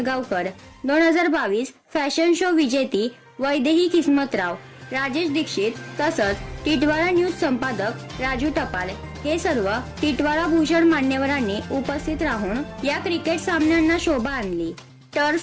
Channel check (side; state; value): both; identical; correlation 1.00